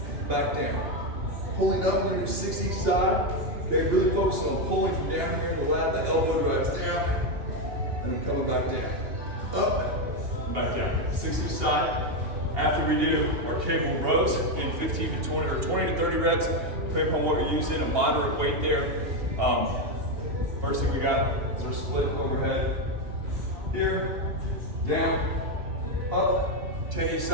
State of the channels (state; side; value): late; left; 2.8 ms